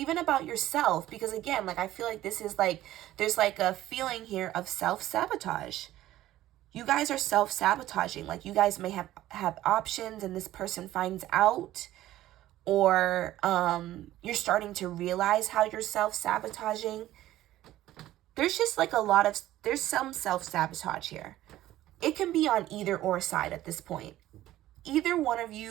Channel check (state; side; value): quieter; left; 14.5 dB